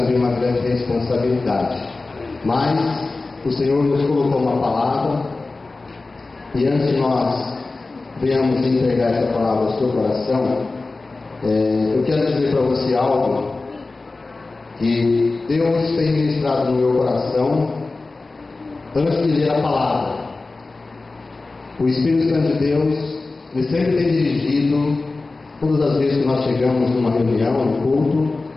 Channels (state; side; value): quieter; right; 3.5 dB